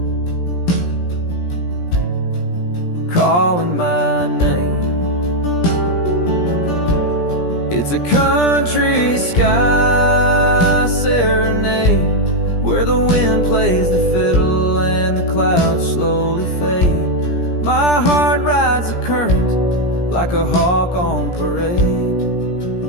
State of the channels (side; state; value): right; late; 17 ms